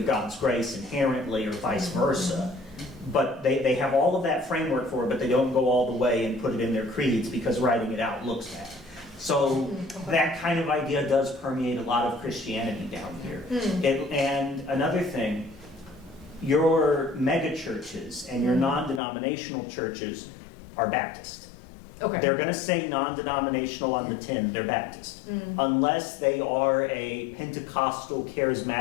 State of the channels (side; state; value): right; drops out; at 19.0 s